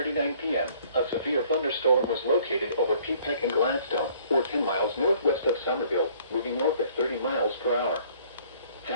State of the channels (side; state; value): both; inverted; correlation -0.58